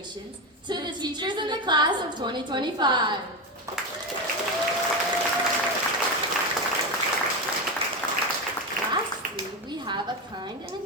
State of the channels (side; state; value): both; normal; correlation 0.15